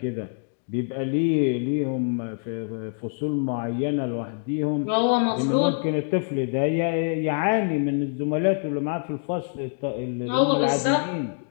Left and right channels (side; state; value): right; silent; 62 dB below the other